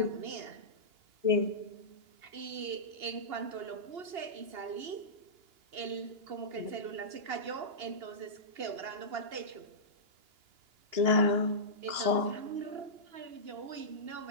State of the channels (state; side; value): late; left; 2.9 ms